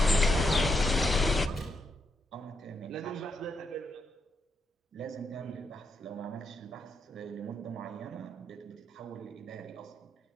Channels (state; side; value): normal; both; correlation 0.80